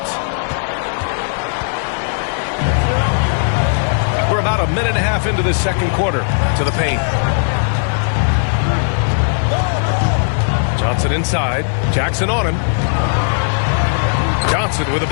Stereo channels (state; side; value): silent; right; 60 dB below the other